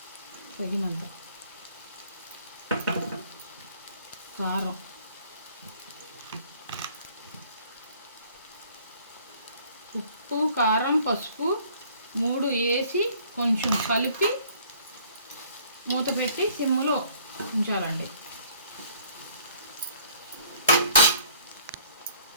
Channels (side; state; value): both; inverted; correlation -0.58